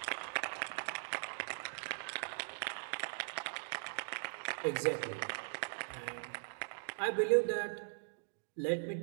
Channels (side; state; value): left; silent; digital silence